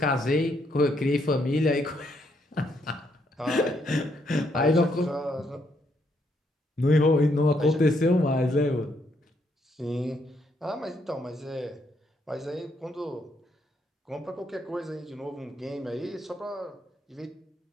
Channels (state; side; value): normal; both; correlation 0.74